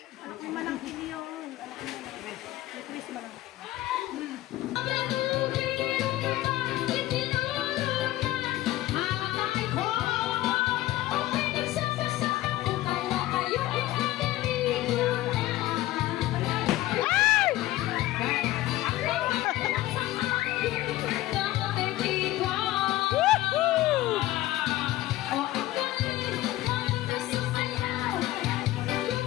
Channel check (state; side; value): quieter; right; 16.2 dB